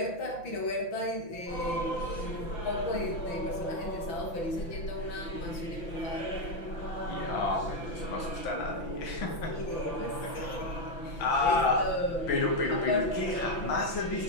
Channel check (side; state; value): right; late; 5.9 ms